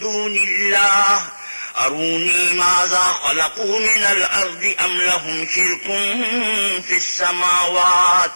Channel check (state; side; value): inverted; both; correlation -1.00